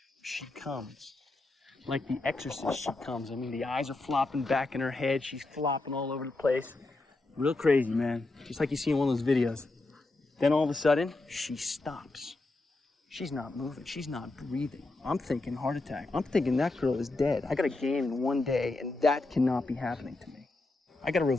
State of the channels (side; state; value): right; quieter; 3.1 dB